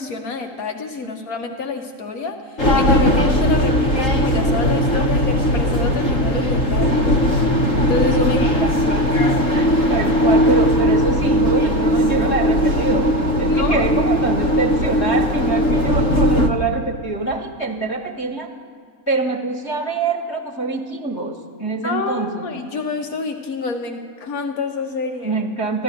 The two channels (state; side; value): late; right; 3.8 ms